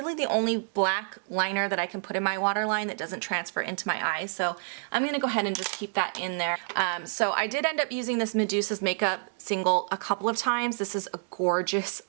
the only black liner that I can put in my waterline that doesn't transfer into my eyes. So I'm going to go ahead and just keep that in there. So I did end up using this Medusa's Makeup single a couple of times. This is a gorgeous,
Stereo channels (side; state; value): left; silent; digital silence